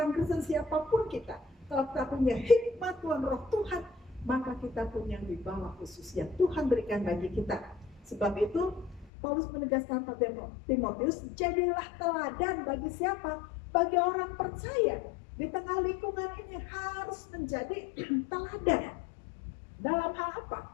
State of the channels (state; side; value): drops out; right; at 9.1 s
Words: Kristen siapapun kita, kalau kita punya hikmat Tuhan, roh Tuhan, maka kita punya wibawa khusus yang Tuhan berikan bagi kita. Sebab itu Paulus menegaskan pada Timotius, jadilah teladan bagi siapa? Bagi orang percaya. Di tengah lingkungan ini harus menjadi teladan. Dalam hal apa?